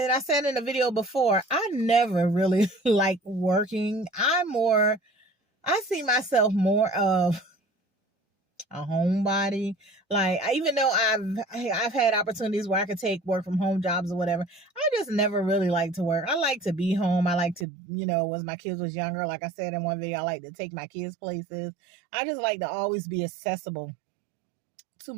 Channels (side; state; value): left; drops out; at 17.7 s